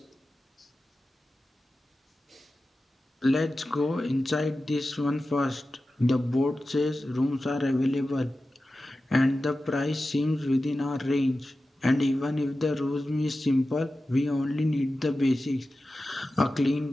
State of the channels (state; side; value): normal; both; correlation 0.94